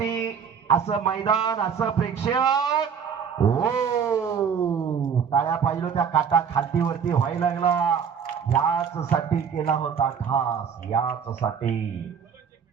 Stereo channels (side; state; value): left; quieter; 7.1 dB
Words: असं मैदान, असं प्रेक्षक। हो टाळ्या पाहिजे त्या काटा खालती वरती व्हायला लागला। याच साठी केला होता खास, याच साठी।